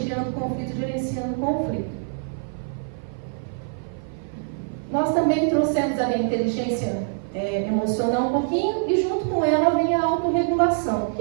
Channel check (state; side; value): silent; left; 55 dB below the other